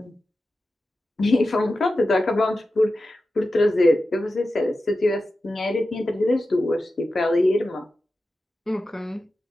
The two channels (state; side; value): normal; both; correlation 0.93